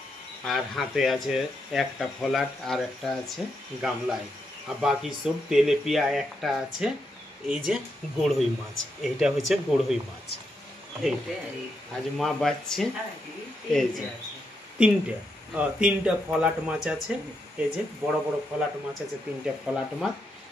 আর হাতে আছে একটা ফলাট আর একটা আছে গামলায় আর বাকি সব তেলেপিয়া একটা আছে এই যে গড়ই মাছ এইটা হচ্ছে গড়ই মাছ আজ মা বাঁচছে এই যে তিনটা ফলাট মাছ আছে এই যে বড় বড় ফলাট মাছ আছে তিনটা ফলাট মাছ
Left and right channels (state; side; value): normal; both; correlation 0.82